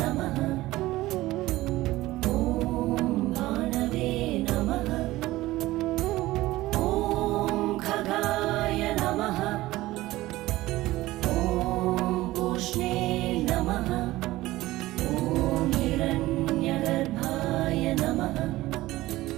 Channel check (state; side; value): quieter; left; 17.5 dB